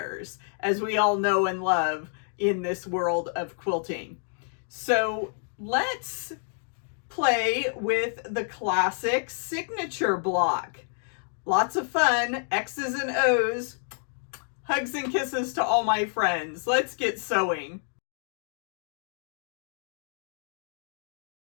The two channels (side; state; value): right; silent; 59 dB below the other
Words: as we all know and love in this world of quilting. So let's play with the classic signature block. Lots of fun, X's and O's. Hugs and kisses to all my friends. Let's get sewing.